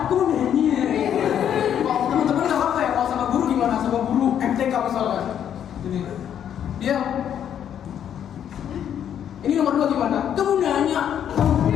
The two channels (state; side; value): quieter; right; 9.5 dB